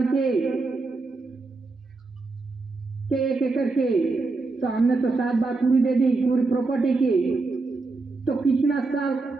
के एक एक करके, तो हमने तो 7 बार पूरी दे दी पूरी प्रॉपर्टी की। तो कितना साल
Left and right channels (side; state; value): left; quieter; 3.7 dB